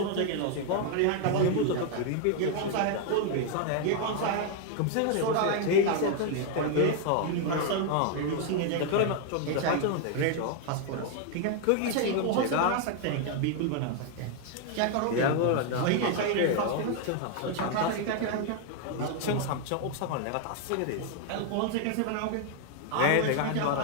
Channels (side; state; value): both; different; correlation 0.00